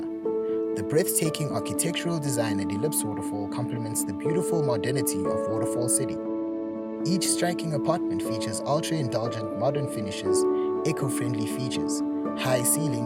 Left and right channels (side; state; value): both; identical; correlation 1.00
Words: The breathtaking architectural design at Ellipse Waterfall complements the beautiful modernity of Waterfall City. Each striking apartment features ultra-indulgent modern finishes, eco-friendly features, high